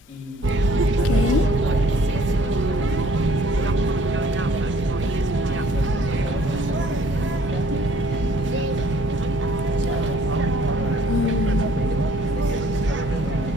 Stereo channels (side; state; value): both; normal; correlation 0.58